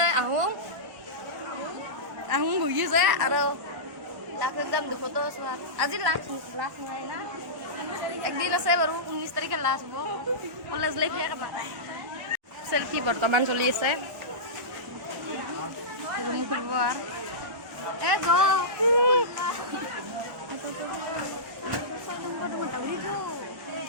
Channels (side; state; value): left; late; 1.1 ms